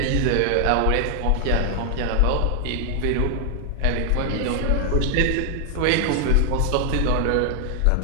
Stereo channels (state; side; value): different; both; correlation 0.00